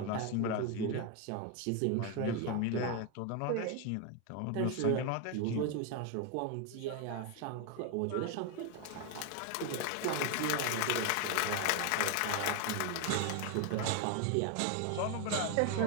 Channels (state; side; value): different; both; correlation 0.01